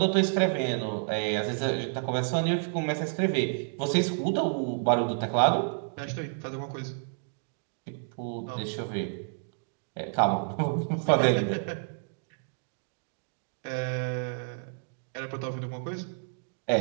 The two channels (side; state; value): left; silent; digital silence